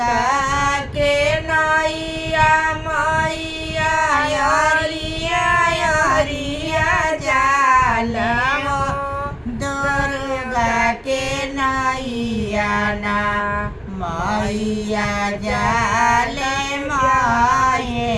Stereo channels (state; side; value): identical; both; correlation 1.00